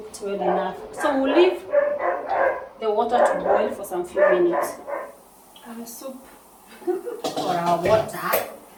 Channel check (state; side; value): identical; both; correlation 1.00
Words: well enough. So we'll leave the water to boil for some few minutes. Soup. our water